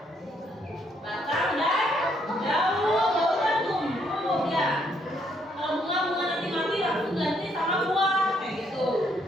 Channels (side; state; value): both; normal; correlation 0.71